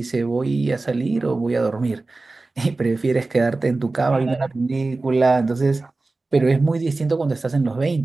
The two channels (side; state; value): left; quieter; 3.4 dB